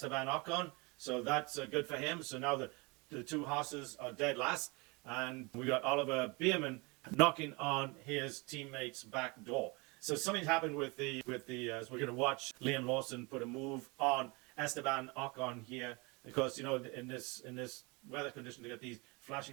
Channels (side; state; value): left; quieter; 27.7 dB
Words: Ocon, so that's good for him. So now the two Haas's are dead last, and we got Oliver Bierman knocking on his teammate's back door. So something's happened with the as we're going to watch Liam Lawson put a move on Esteban Ocon here, because you know in this weather condition they got these